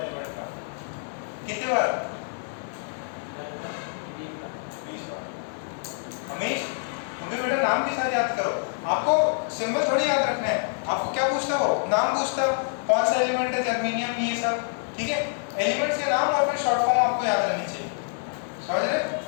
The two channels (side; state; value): right; silent; digital silence